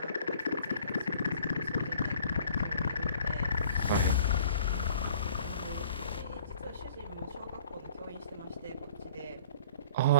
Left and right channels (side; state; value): both; inverted; correlation -0.52